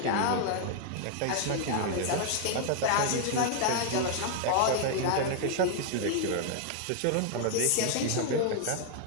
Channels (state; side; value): different; both; correlation 0.00